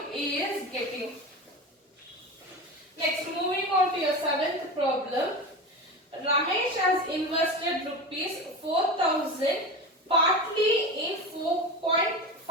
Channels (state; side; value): normal; both; correlation 0.26